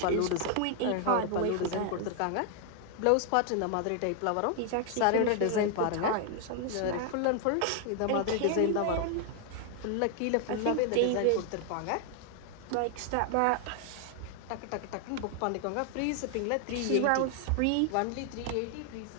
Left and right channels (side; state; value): both; different; correlation 0.00